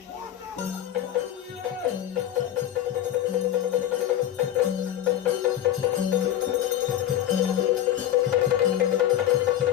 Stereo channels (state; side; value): quieter; right; 11.8 dB